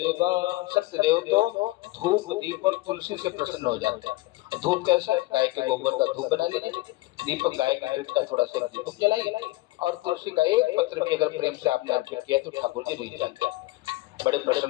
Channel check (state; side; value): quieter; right; 19.7 dB